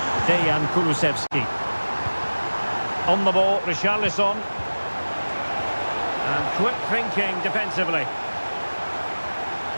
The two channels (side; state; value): both; inverted; correlation -1.00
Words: Dejan Kulusevski. On the ball, Richarlison. And quick thinking defensively.